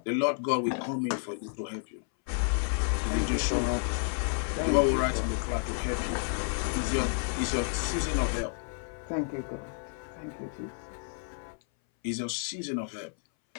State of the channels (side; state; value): right; silent; 57 dB below the other